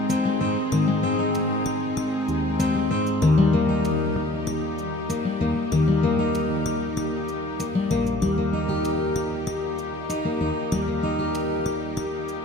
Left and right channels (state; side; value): normal; both; correlation 0.51